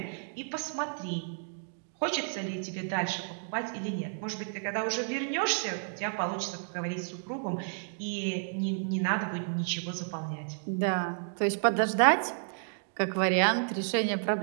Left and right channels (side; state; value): left; silent; digital silence